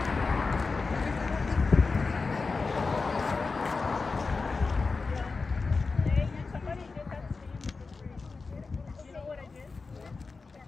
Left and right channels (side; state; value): right; quieter; 4.2 dB